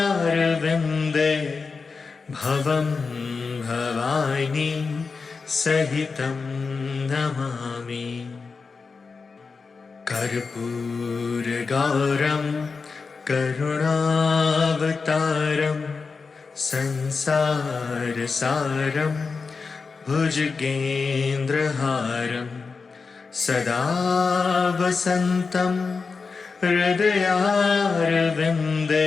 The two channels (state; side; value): quieter; right; 4.7 dB